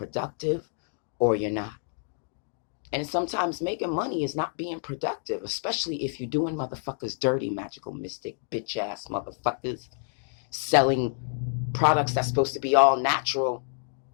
or you're not. And sometimes making money is not being productive, especially if you're doing motherfuckers dirty, magical, mystic, bitch ass motherfuckers selling products that's supposed to be all natural,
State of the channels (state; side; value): silent; right; digital silence